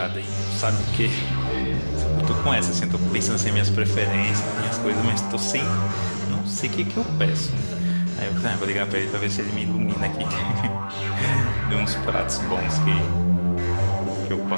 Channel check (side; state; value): both; inverted; correlation -1.00